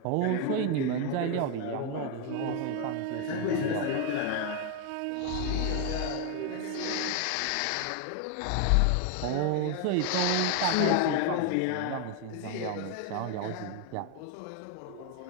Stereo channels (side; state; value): both; different; correlation 0.01